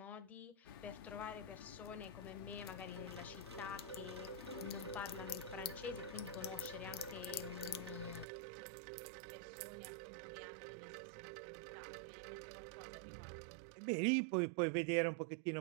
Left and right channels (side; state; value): left; drops out; at 8.2 s